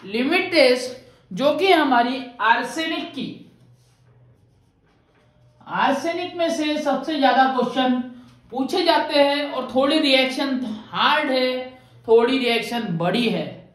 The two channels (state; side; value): identical; both; correlation 1.00